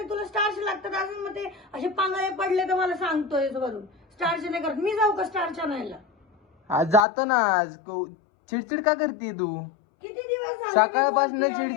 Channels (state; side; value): drops out; right; at 7.1 s